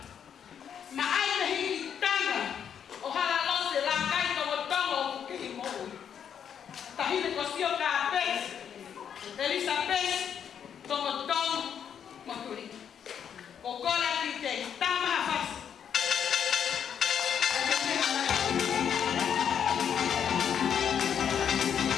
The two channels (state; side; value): quieter; right; 8.3 dB